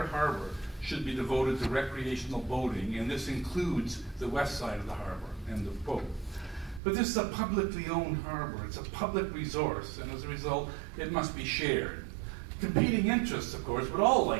harbor should be devoted to recreational boating, and this includes the west side of the harbor, end of quote. But this is a publicly owned harbor. It's a public resource, and as a result, it must be shared. Competing interests, of course, would all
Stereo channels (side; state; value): left; drops out; at 6.8 s